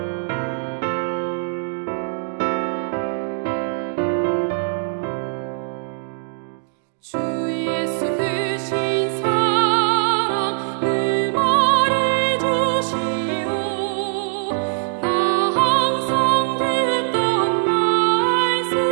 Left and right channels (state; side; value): silent; left; digital silence